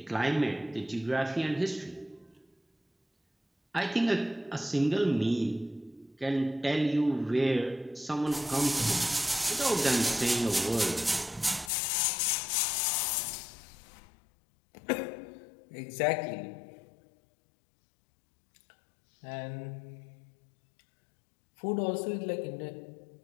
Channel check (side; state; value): right; drops out; at 11.7 s